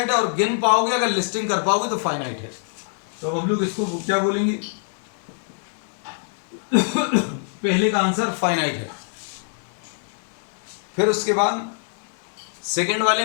है, और गिन पाओगे अगर लिस्टिंग कर पाओगे तो फाइनाइट है. तो अब हम लोग इसको क्या बोलेंगे? पहले का आंसर फाइनाइट है. फिर उसके बाद सेकेंड वाले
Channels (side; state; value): right; silent; digital silence